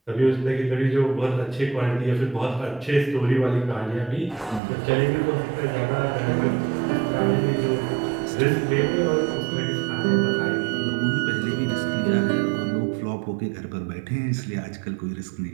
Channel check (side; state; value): left; drops out; at 4.6 s